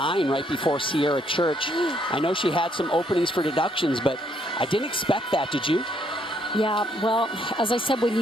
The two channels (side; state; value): both; normal; correlation 0.70